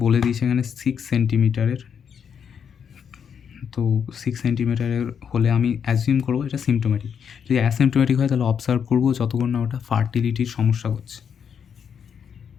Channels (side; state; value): right; quieter; 7.4 dB